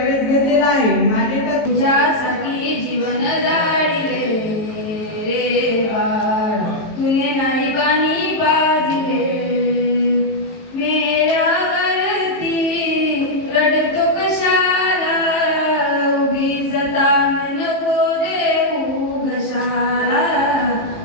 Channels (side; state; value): right; late; 18 ms